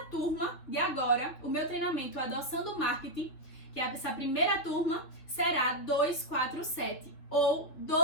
turma de agora, o meu treinamento Adoçando Marketing, que é essa primeira turma, será R$247, ou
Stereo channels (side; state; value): right; late; 3.5 ms